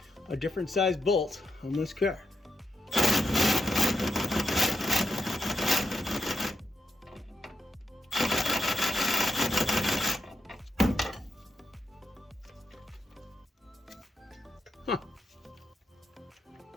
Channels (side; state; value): both; normal; correlation 0.85